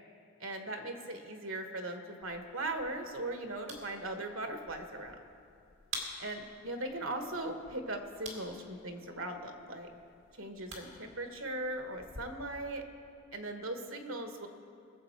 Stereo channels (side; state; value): both; normal; correlation -0.09